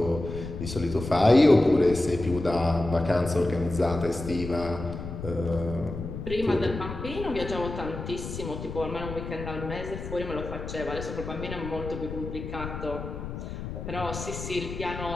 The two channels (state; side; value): noise; left; rumble, 8 dB below the sound